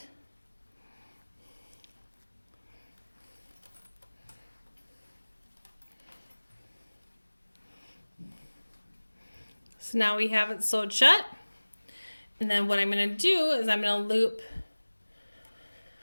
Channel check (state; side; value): inverted; both; correlation -1.00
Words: So now we have it sewed shut. And then what I'm going to do is I'm going to loop